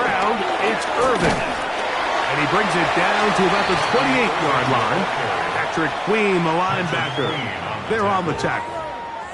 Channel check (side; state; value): both; identical; correlation 1.00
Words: it's Irving. And he brings it down to about the 28-yard line. Patrick Queen, the linebacker. They're on the tackle.